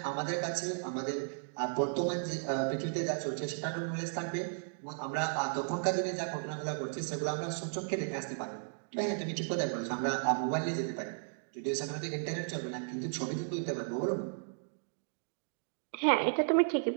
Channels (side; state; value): left; silent; digital silence